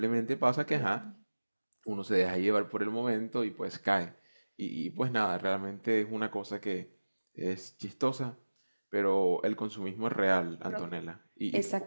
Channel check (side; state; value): both; inverted; correlation -1.00